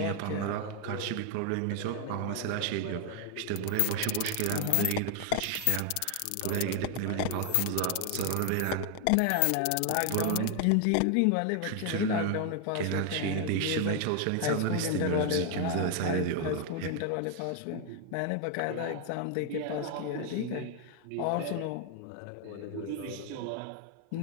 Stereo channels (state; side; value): different; both; correlation 0.01